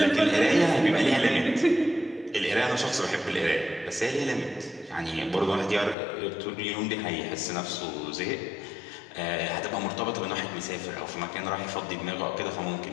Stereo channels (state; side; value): drops out; right; at 6.0 s